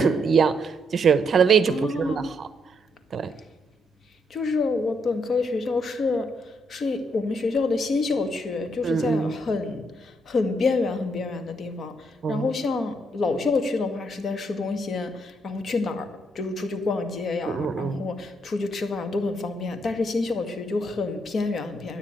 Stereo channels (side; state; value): both; normal; correlation 0.75